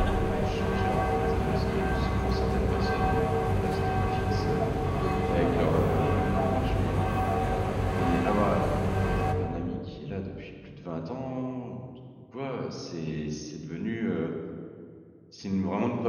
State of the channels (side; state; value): both; identical; correlation 1.00